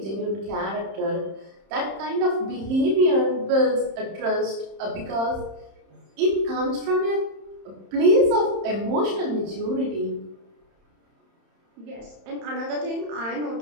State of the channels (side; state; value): left; late; 31 ms